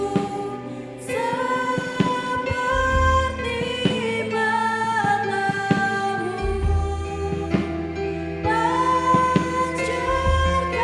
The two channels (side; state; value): both; identical; correlation 1.00